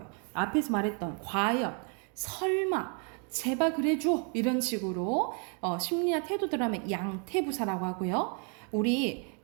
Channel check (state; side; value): quieter; left; 38.5 dB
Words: 앞에서 말했던 과연, 설마, 제발 그래줘 이런 식으로 심리나 태도 들어가면 양태부사라고 하고요. 우리